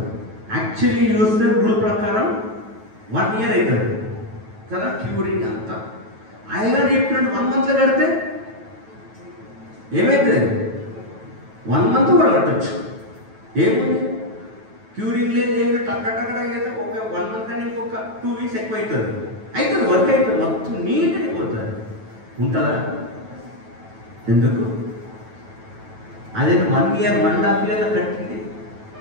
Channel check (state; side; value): late; left; 9.2 ms